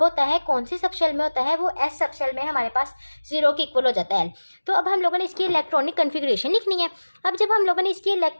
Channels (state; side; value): inverted; both; correlation -1.00